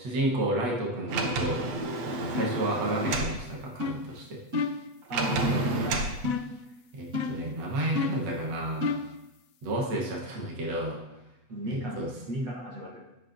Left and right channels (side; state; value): left; late; 8.1 ms